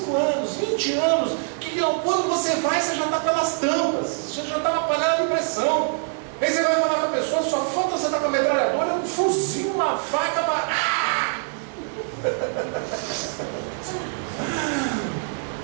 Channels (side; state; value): left; silent; 58 dB below the other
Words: anos, 20 anos, que quando você vai, você já está pelas tampas, você já está na panela de pressão. Aí você vai falar com a pessoa, só falta você estar com a metralhadora, um fuzil, uma faca para...